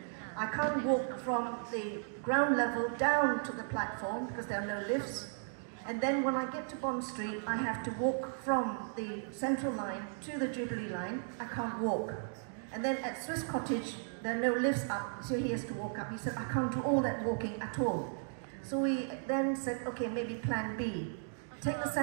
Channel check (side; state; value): left; silent; digital silence